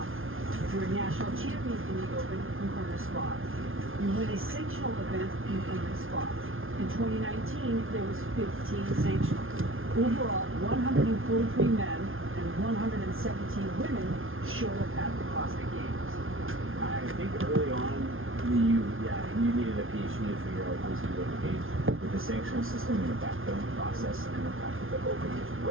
If you're a national champion in the Open, you earn a spot. You win a sanctional event, you earn a spot. In 2019, there was 15 sanctionals. Overall, 143 men and 117 women showed up at the CrossFit Games. I think early on, you needed a PhD to figure out who's going to go to the games. With the sanctional system and the backfilling process, and the fact that the Open was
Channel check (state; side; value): late; left; 0.60 ms